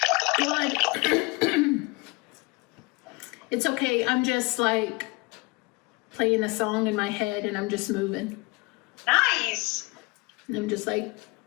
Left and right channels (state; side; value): quieter; right; 26.5 dB